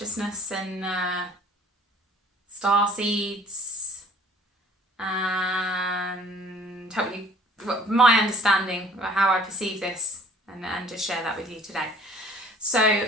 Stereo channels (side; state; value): both; normal; correlation 0.53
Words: and star seeds and help you my understanding of how I perceive this and just share that with you today. So